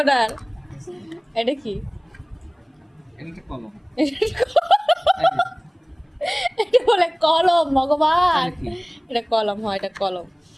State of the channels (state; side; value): identical; both; correlation 1.00